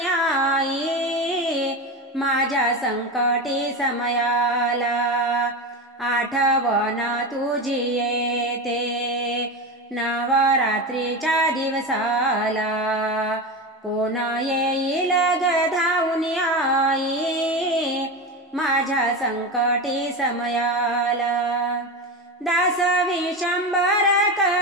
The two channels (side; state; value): both; normal; correlation 0.21